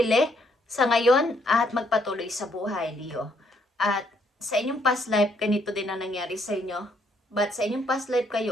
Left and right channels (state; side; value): normal; both; correlation 0.71